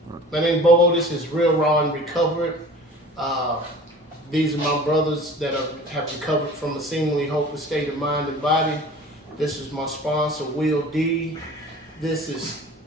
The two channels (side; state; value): both; normal; correlation 0.43